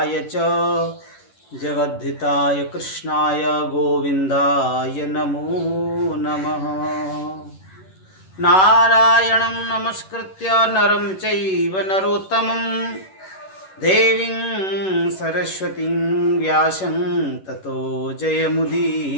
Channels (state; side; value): late; right; 11 ms